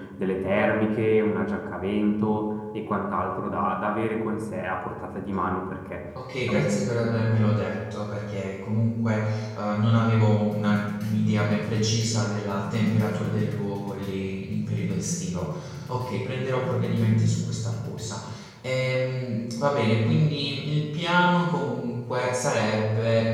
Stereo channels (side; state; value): both; identical; correlation 1.00